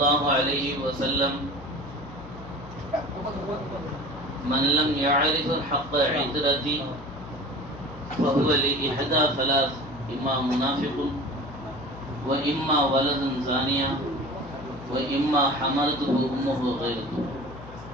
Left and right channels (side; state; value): left; noise; hum, 16 dB below the sound